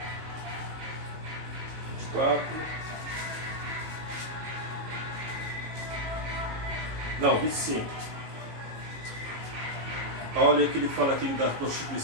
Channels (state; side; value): late; left; 18 ms